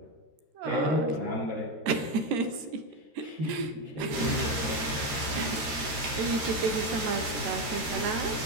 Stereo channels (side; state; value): left; late; 13 ms